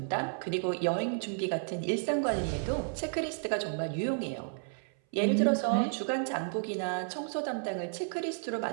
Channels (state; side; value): silent; left; 56 dB below the other